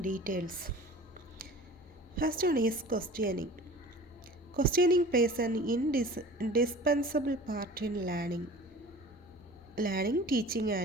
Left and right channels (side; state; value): both; normal; correlation 0.42